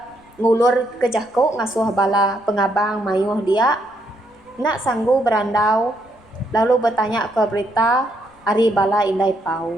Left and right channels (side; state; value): left; noise; rumble, 30 dB below the sound